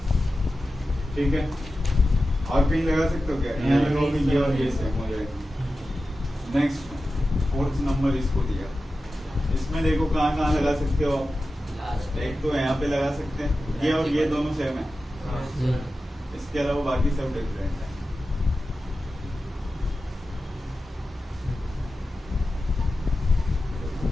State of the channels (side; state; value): both; normal; correlation 0.93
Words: ठीक है। और कहीं लगा सकते हो क्या? यहाँ लगाओगे ये और ये सेम हो जाएगा। नेक्स्ट 4th नंबर इसको दिया। इसमें देखो कहाँ लगा सकते हो आप? एक तो यहाँ पे लगा सकते हैं, ये और ये दोनों सेम है। इसके अलावा बाकी सब डिफरेंट है।